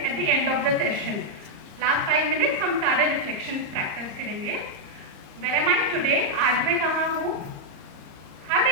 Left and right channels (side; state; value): left; late; 34 ms